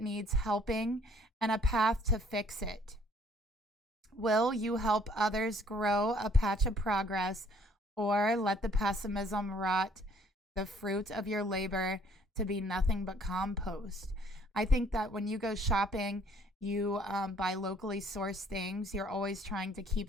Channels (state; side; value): normal; both; correlation 0.61